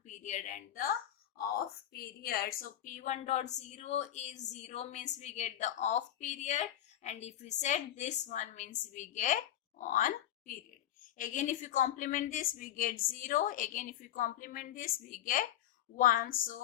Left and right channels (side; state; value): right; quieter; 12.1 dB